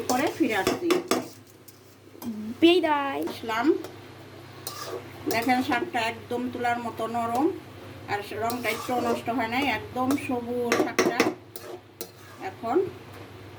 পরে ফিরে আসছি, আসলাম। দেখেন শাকটা একদম তুলার মতো নরম, আর রংটা একটু নষ্ট হয় নাই, একদম সবুজ শাকটা। এখন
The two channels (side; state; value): both; identical; correlation 1.00